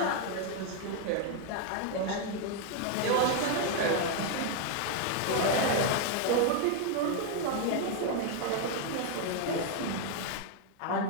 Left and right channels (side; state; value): both; different; correlation 0.00